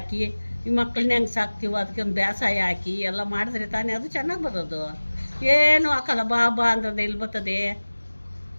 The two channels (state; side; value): inverted; both; correlation -1.00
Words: ಈ ಮಕ್ಕಳನ್ನ ಹೆಂಗೆ ಸಾಕ್ತೀವೋ ಅದಕ್ಕೆ ಒಂದು ಬೇಸಾಯ ಹಾಕಿ ಎಲ್ಲ ಮಾಡಿದ್ರೆ ತಾನೇ ಅದು ಚೆನ್ನಾಗಿ ಬರೋದು. ಏನು ಹಾಕಲ್ಲ, ಬಾ ಬಾ ಅಂದ್ರೆ ಎಲ್ಲಿ ಬರ್ತದೆ?